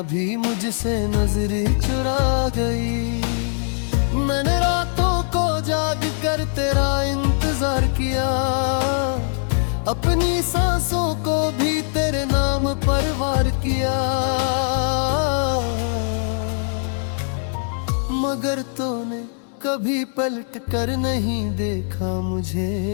भी मुझसे नजरें चुरा गई। मैंने रातों को जाग कर तेरा इंतजार किया। अपनी सांसों को भी तेरे नाम पर वार किया। मगर तूने कभी पलट कर नहीं देखा मुझे।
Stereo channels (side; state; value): right; silent; 64 dB below the other